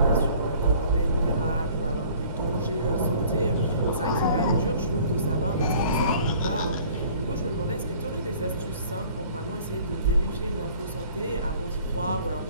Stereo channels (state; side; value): inverted; both; correlation -0.52